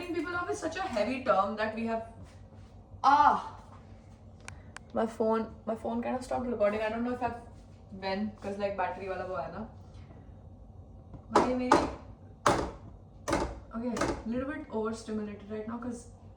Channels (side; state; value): both; identical; correlation 1.00